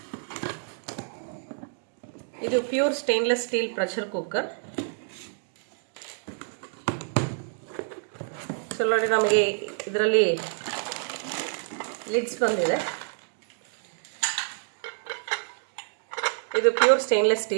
ಇದು pure stainless steel pressure cooker. So ನೋಡಿ, ನಮಗೆ ಇದರಲ್ಲಿ ಲಿಡ್ಸ್ ಬಂದಿದೆ. ಇದು ಪ್ಯೂರ್ ಸ್ಟೇನ್ಲೆಸ್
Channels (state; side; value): silent; left; digital silence